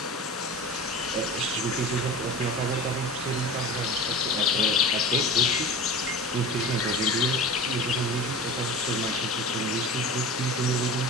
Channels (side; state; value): both; normal; correlation 0.33